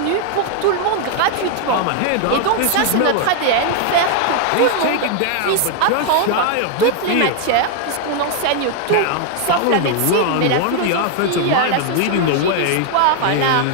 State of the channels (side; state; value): both; different; correlation 0.00